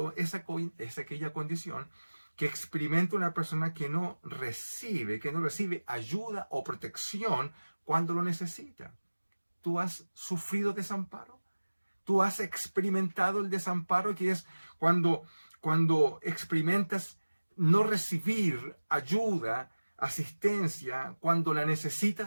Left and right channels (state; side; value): inverted; both; correlation -1.00